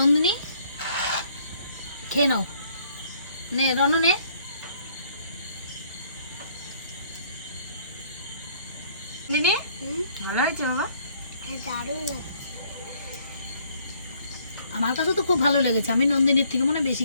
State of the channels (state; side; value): inverted; both; correlation -0.63